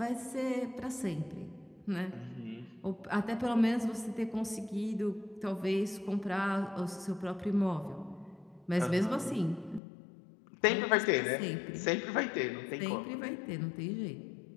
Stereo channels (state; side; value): drops out; right; at 9.8 s